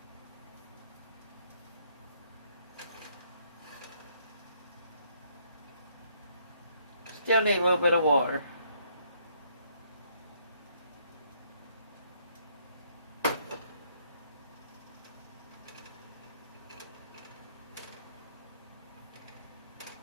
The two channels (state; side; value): inverted; both; correlation -0.68